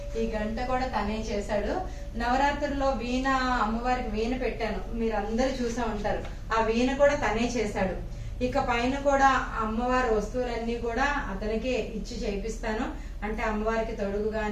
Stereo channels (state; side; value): identical; both; correlation 1.00